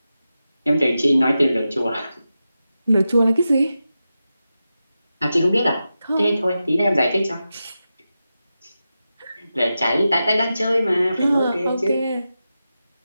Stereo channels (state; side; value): inverted; both; correlation -0.91